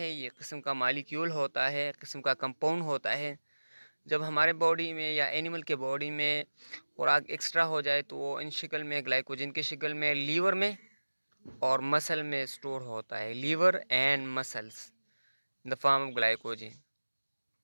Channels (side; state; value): both; inverted; correlation -1.00